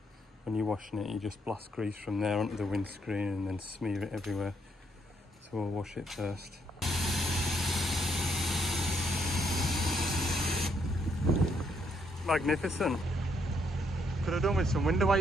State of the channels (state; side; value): normal; both; correlation 0.73